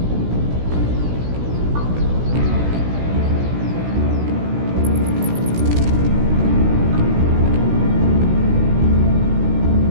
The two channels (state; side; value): late; left; 16 ms